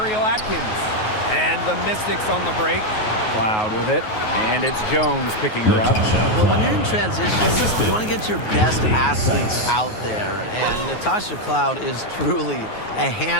Atkins. And the Mystics on the break. Cloud with it, and it's Jones picking her up. Well, when you're in transition, you want to get your best athletes out there, and Natasha Cloud is truly a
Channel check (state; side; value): late; right; 9.4 ms